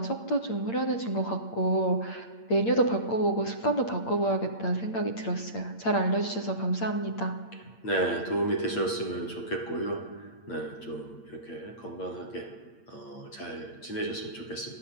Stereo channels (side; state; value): right; late; 8.8 ms